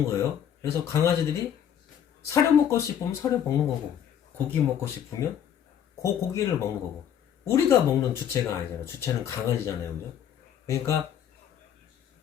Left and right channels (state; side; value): quieter; right; 9.2 dB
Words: 거예요. 그래서 강아지들이 사료 먹고 싶으면 사료 먹는 거고 고기 먹고 싶으면 고기를 먹는 거고 우리가 먹는 주체가 아니잖아요. 주체는 강아지잖아요. 그죠? 그러니까